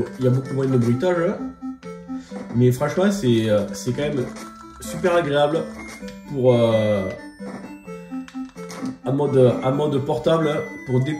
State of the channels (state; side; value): identical; both; correlation 1.00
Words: bruitage. Mais franchement, c'est quand même super agréable. pour en mode portable pour